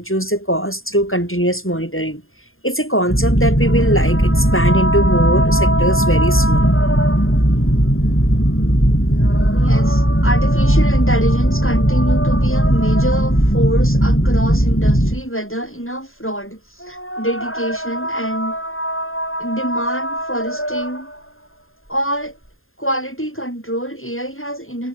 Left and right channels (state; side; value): late; right; 0.60 ms